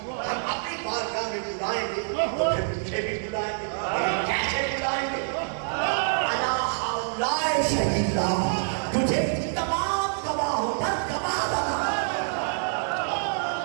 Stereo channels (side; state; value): left; silent; digital silence